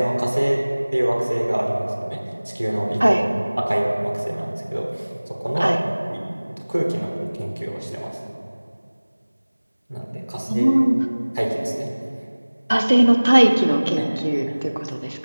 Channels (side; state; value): both; inverted; correlation -1.00